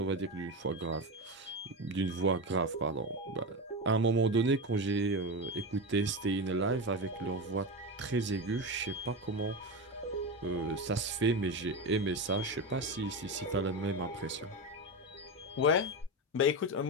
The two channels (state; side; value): normal; both; correlation 0.17